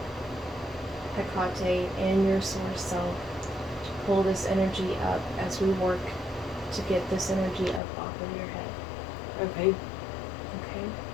Hecate and your source self to pull this energy up as we work to get this energy up off of your head. Okay. Okay?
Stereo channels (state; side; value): drops out; right; at 7.8 s